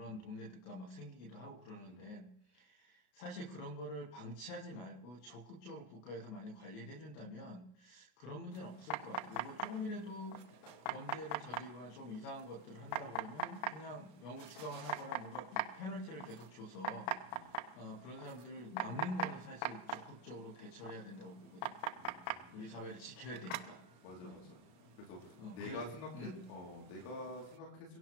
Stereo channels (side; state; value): right; late; 33 ms